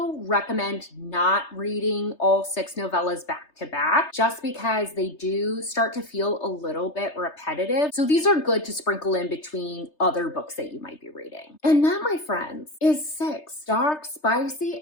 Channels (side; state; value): right; late; 3.3 ms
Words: recommend not reading all 6 novellas back to back just because they do start to feel a little bit repetitive. So these are good to sprinkle in between other books that you might be reading. And that, my friends, is 6 dark, spicy,